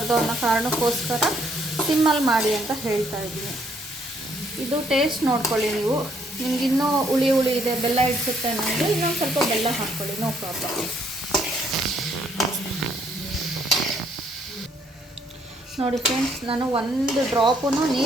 ಅನ್ನೋ ಕಾರಣಕ್ಕೋಸ್ಕರ ಸಿಮ್ಮಲ್ಲಿ ಮಾಡಿ ಅಂತ ಹೇಳ್ತಾ ಇದ್ದೀನಿ. ಇದು ಟೇಸ್ಟ್ ನೋಡ್ಕೊಳ್ಳಿ ನೀವು. ನಿಮಗಿನ್ನೂ ಹುಳಿ ಇದೆ, ಬೆಲ್ಲ ಇಡ್ಸುತ್ತೆ ಅನ್ನೋದು ಇನ್ನೊಂದು ಸ್ವಲ್ಪ ಬೆಲ್ಲ ಹಾಕ್ಕೊಳ್ಳಿ, ನೋ ಪ್ರಾಬ್ಲಮ್. ನೋಡಿ ಫ್ರೆಂಡ್ಸ್, ನಾನು ಒಂದು ಡ್ರಾಪೂ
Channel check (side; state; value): both; normal; correlation 0.68